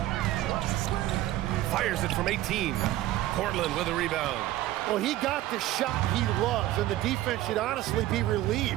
Fires it from 18. Portland with a rebound. Well, he got the shot he loves, and the defense should honestly be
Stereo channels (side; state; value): left; quieter; 15.1 dB